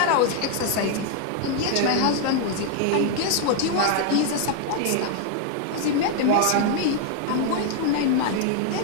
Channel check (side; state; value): both; different; correlation 0.00